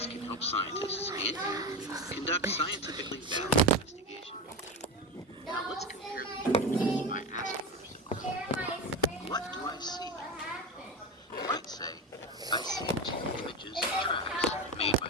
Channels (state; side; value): normal; both; correlation 0.18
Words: can help scientists and you conduct scientifically valid investigations. Now let's compare the images by asking yourself, what do I see? You might say, I see two images of tracks made by